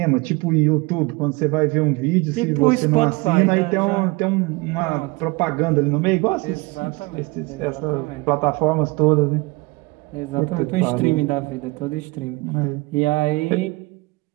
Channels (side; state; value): left; quieter; 24.4 dB